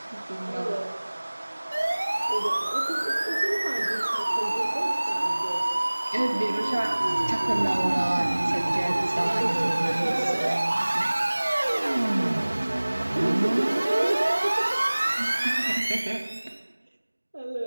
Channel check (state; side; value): inverted; both; correlation -1.00